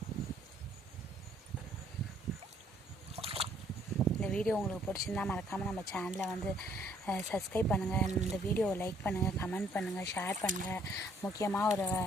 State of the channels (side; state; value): both; normal; correlation 0.65